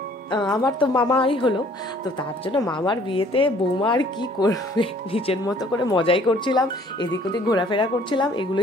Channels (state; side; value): normal; both; correlation 0.57